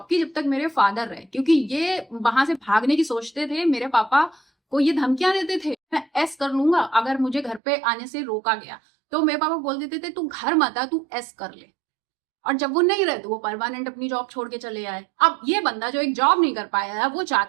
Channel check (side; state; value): left; drops out; at 7.6 s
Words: की जब तक मेरे फादर रहे, क्योंकि ये वहां से भागने की सोचते थे। मेरे पापा को ये धमकियां देते थे, मैं एस कर लूंगा अगर मुझे घर पे आने से रोका गया। तो मेरे पापा बोल देते थे तू घर मत आ, तू एस कर ले। और जब वो नहीं रहे तो वो परमानेंट अपनी जॉब छोड़ के चले आए। अब ये बंदा जो एक जॉब नहीं कर पाया है, वो